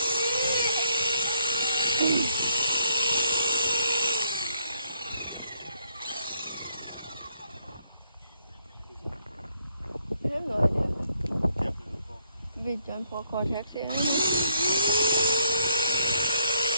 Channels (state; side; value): inverted; both; correlation -0.70